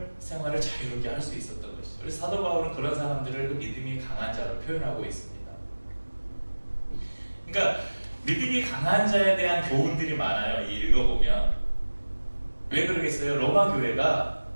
생활을 자유롭게 할 수 있었던 것이죠. 그래서 사도 바울은 그런 사람들을 그 믿음이 강한 자로 표현하고 있습니다. 그러니까 믿음이 강한 자에 대한 교훈들이 많아요. 읽어보면. 왜 그러겠어요? 로마 교회가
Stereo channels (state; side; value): inverted; both; correlation -1.00